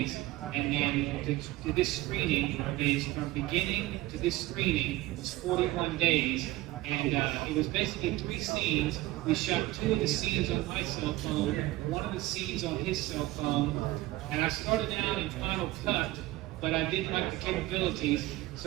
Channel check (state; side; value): quieter; left; 18.1 dB